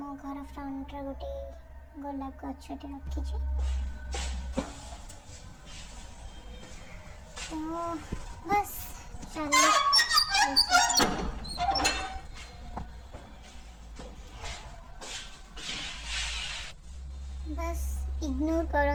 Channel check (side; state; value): both; identical; correlation 1.00